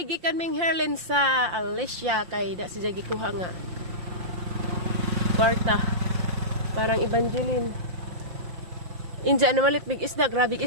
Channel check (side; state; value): left; late; 5.7 ms